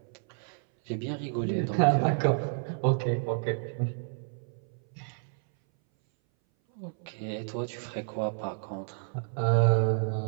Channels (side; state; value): left; silent; 58 dB below the other